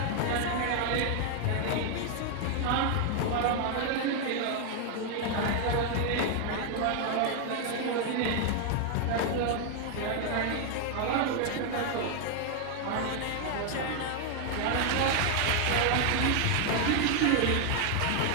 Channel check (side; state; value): both; different; correlation 0.00